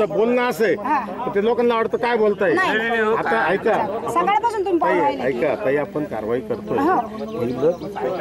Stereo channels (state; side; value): identical; both; correlation 1.00